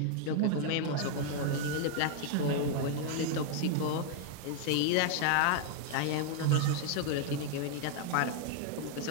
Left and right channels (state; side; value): different; both; correlation 0.00